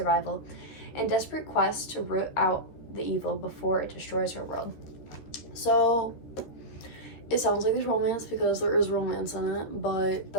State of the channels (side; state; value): right; late; 13 ms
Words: and desperate quest to root out the evil before it destroys her world. So it sounds like there's romance because there is romance in it, but